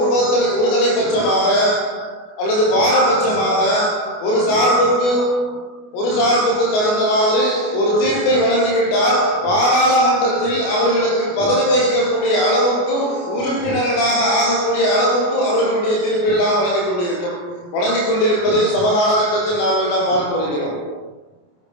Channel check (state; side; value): late; right; 28 ms